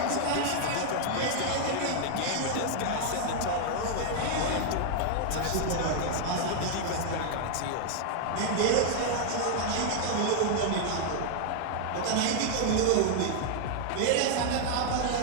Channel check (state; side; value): different; both; correlation 0.00